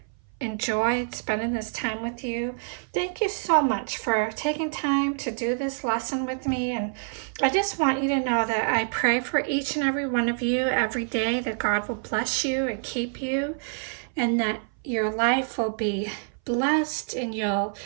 enjoyed spending this time with you. Thank you so much for taking time to do this lesson with me, and I just want you to know that I pray for each and every one of you every day, that God will bless you and keep you, and that your life will be blessed, and you'll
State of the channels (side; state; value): left; silent; 58 dB below the other